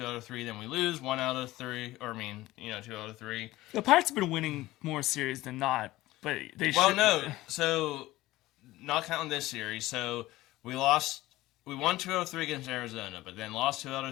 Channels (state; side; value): quieter; right; 17.4 dB